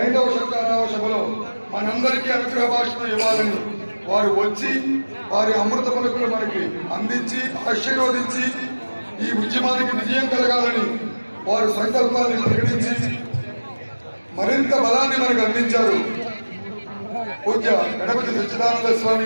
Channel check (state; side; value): inverted; both; correlation -1.00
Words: 5వ శంకరావ సభలో మనందరికీ అనుగ్రహ భాషను ఇవ్వాలని వారు వచ్చి వారి అమృత పలుకులు మనకి అందించి ఆశీర్వదించి ఈ ఉద్యమానికి విజయం కలగాలని వారు సంకల్పాన్ని ప్రకటించి మరింత బలాన్ని మనకు అందించారు. పూజ్య గణపతి సచ్చిదానంద